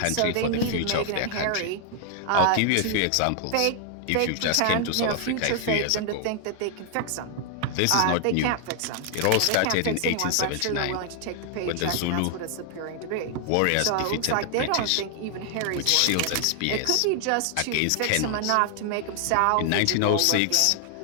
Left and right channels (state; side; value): different; both; correlation 0.00